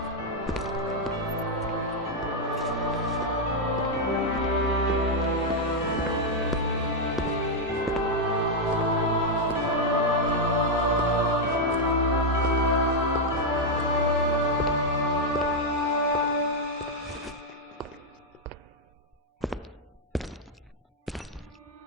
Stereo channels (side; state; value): both; normal; correlation 0.00